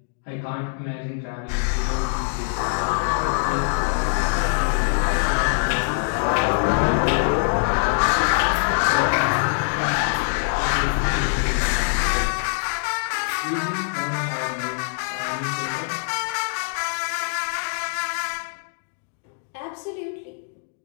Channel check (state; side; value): silent; right; digital silence